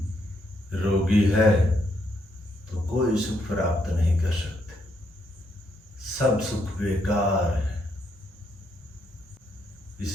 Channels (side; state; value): both; normal; correlation 0.76